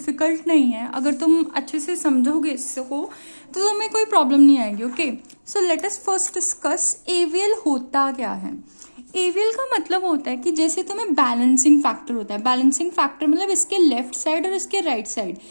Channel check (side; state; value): both; inverted; correlation -1.00